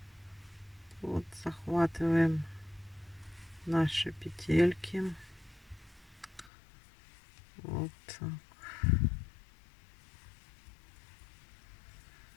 Вот захватываем наши петельки. Вот так.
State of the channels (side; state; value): right; drops out; at 6.5 s